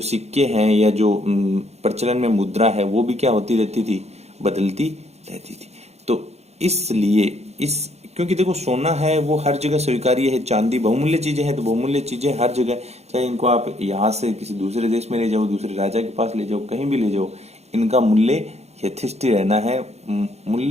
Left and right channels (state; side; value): late; left; 0.31 ms